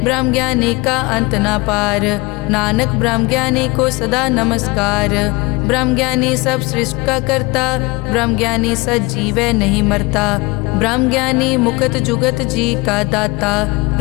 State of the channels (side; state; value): right; quieter; 24.6 dB